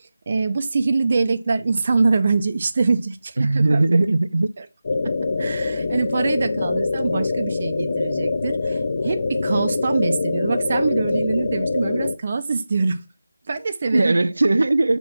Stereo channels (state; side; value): inverted; both; correlation -0.93